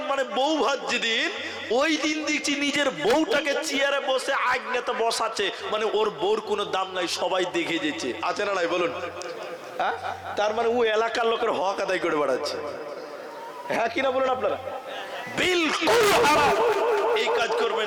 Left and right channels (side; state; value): both; identical; correlation 1.00